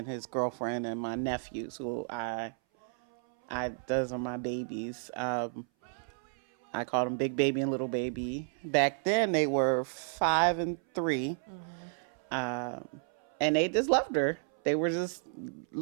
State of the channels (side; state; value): left; silent; 56 dB below the other